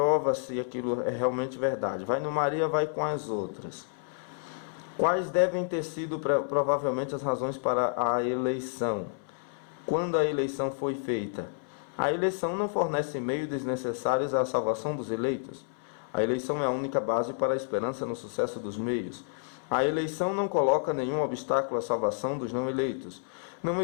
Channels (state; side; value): silent; right; 58 dB below the other